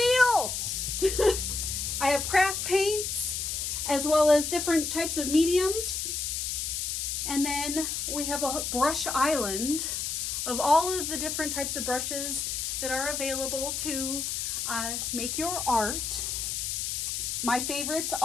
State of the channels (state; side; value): noise; left; hiss, 2 dB below the sound